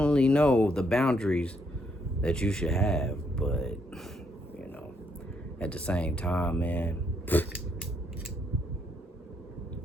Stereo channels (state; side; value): normal; both; correlation 0.74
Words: know the boundaries that you should have. But at the same time, man,